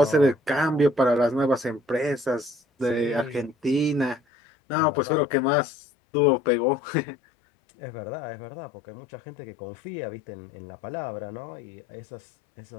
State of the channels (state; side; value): drops out; right; at 4.2 s